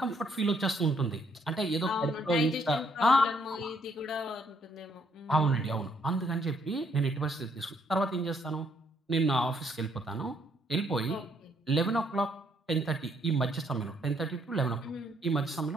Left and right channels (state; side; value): normal; both; correlation 0.70